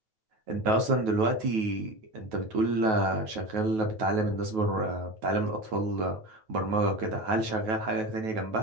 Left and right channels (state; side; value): late; left; 9.3 ms